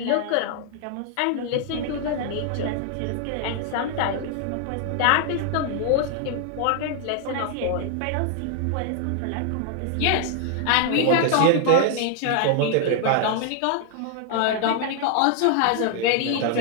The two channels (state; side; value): different; both; correlation 0.00